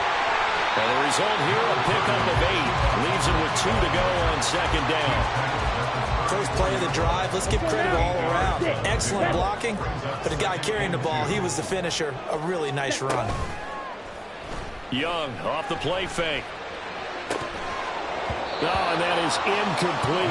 And the result here, a pickup of 8. Leaves it with 2 to go on 2nd down. First play of the drive, let's give credit all around. Excellent blocking, but the guy carrying the ball, he was the finisher. A really nice run. Young off the play fake. Oh, and that is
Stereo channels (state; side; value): identical; both; correlation 1.00